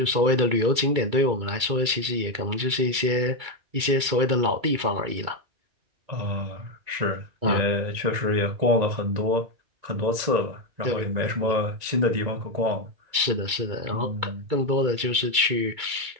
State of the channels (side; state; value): left; late; 2.3 ms